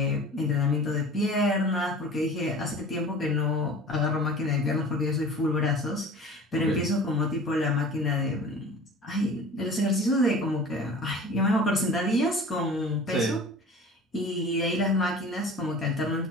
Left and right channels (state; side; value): normal; both; correlation 0.41